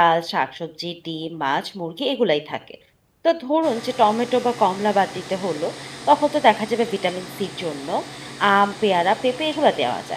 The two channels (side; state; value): both; identical; correlation 1.00